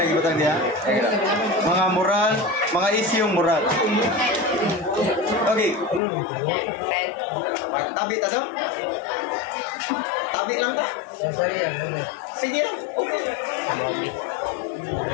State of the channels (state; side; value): drops out; right; at 6.0 s